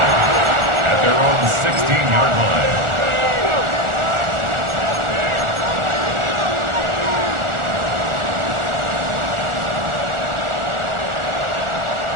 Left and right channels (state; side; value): late; left; 1.4 ms